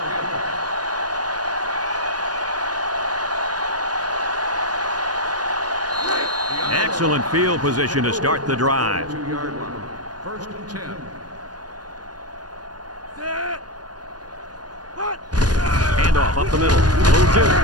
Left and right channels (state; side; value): late; left; 0.69 ms